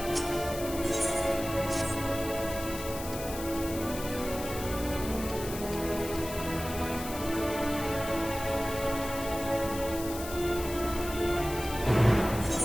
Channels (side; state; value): left; noise; hiss, 10 dB below the sound